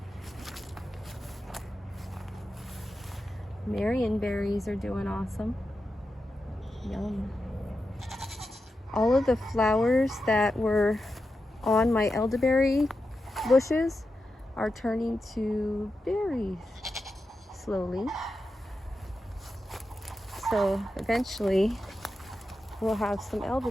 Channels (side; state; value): both; normal; correlation 0.89